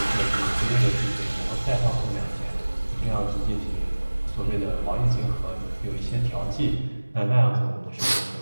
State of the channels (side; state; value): both; inverted; correlation -1.00